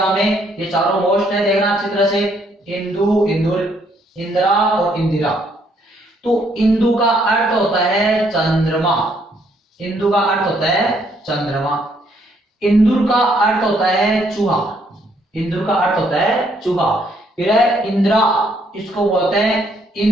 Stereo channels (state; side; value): normal; both; correlation 0.69